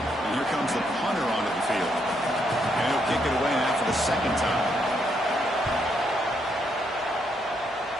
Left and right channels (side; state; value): both; normal; correlation 0.76